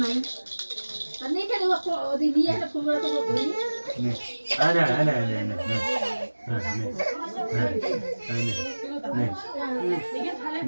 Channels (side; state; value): both; inverted; correlation -1.00